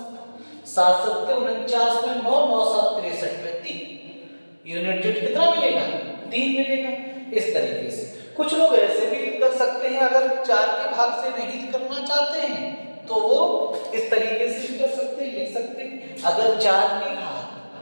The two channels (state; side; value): inverted; both; correlation -1.00